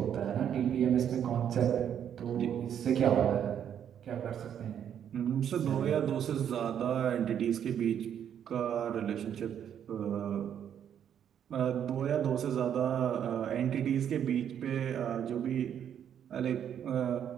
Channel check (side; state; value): left; quieter; 9.1 dB